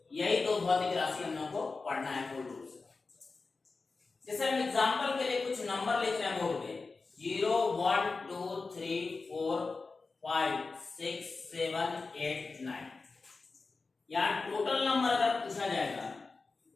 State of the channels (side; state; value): right; quieter; 4.0 dB